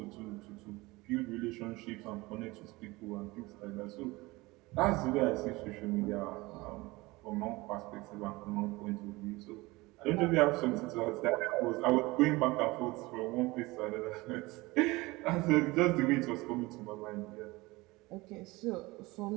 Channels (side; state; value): left; quieter; 21.9 dB